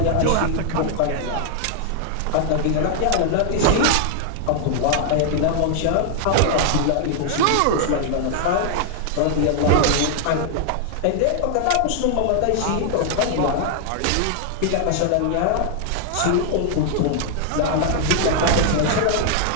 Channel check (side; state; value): both; different; correlation -0.01